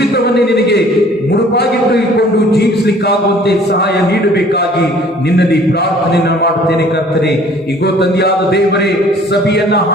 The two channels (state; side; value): normal; both; correlation 0.53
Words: ನಿನಗೆ ಮುಡುಪಾಗಿಟ್ಟುಕೊಂಡು ಜೀವಿಸಲಿಕ್ಕಾಗುವಂತೆ ಸಹಾಯ ನೀಡಬೇಕಾಗಿ ನಿನ್ನಲ್ಲಿ ಪ್ರಾರ್ಥನೆಯನ್ನು ಮಾಡುತ್ತೇನೆ ಕರ್ತನೆ. ಈಗೋ ತಂದೆಯಾದ ದೇವರೇ, ಸಭೆಯನ್ನ